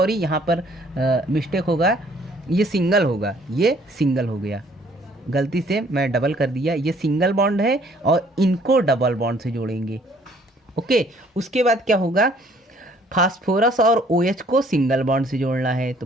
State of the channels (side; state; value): both; normal; correlation 0.60